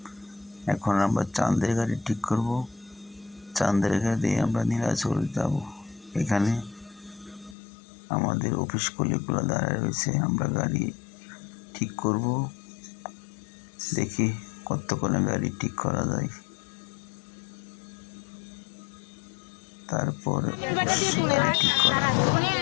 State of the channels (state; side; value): drops out; right; at 7.6 s